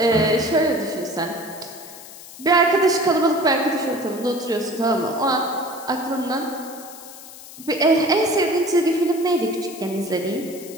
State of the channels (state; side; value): noise; left; hiss, 16 dB below the sound